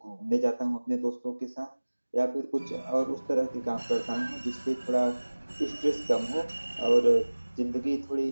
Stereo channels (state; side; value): inverted; both; correlation -1.00